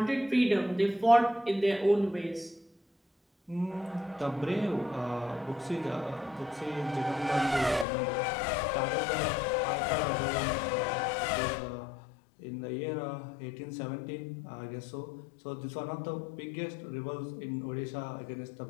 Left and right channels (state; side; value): drops out; right; at 7.9 s